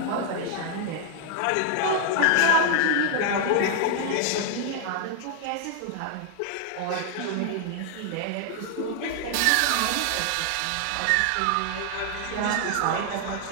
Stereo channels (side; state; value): both; different; correlation 0.00